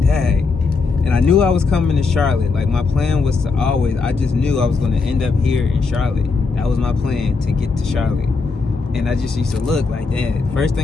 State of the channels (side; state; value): right; quieter; 4.4 dB